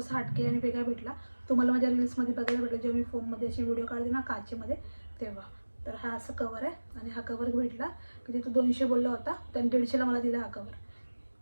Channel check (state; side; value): inverted; both; correlation -1.00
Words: हटके आणि वेगळा भेटला. तुम्हाला माझ्या रील्समध्ये बघायला भेटला जेव्हा मी फोनमध्ये अशी व्हिडिओ काढते ना काचेमध्ये तेव्हा. तर हा असं कवर आहे, आणि हा कवर भेटला की तिथं 200 बोलला होता, त्याने 150ला मला दिला हा कवर.